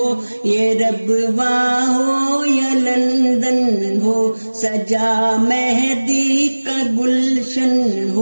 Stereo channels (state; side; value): inverted; both; correlation -1.00